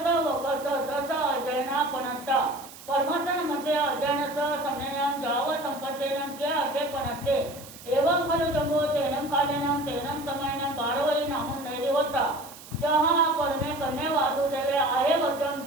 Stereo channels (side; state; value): right; noise; hiss, 17 dB below the sound